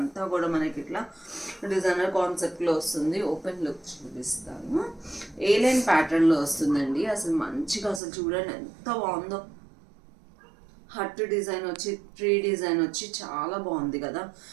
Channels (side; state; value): left; drops out; at 8.0 s